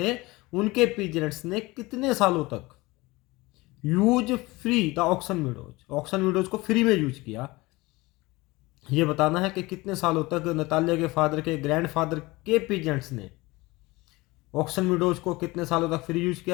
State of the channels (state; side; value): quieter; right; 21.9 dB